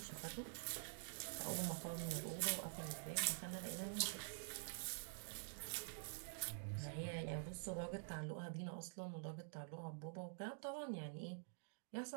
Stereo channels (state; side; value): silent; left; digital silence